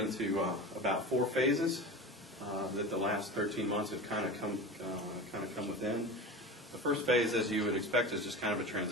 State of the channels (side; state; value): both; normal; correlation 0.31